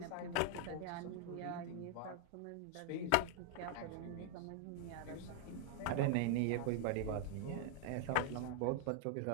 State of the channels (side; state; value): both; different; correlation 0.00